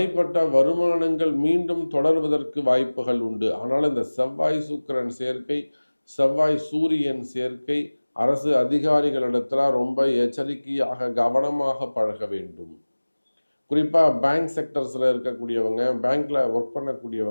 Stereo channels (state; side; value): inverted; both; correlation -1.00